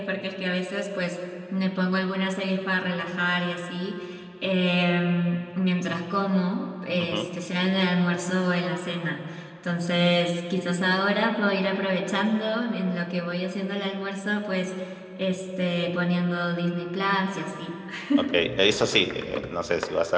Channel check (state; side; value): identical; both; correlation 1.00